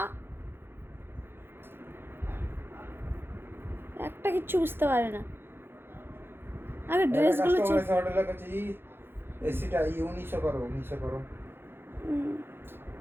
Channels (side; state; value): left; late; 0.11 ms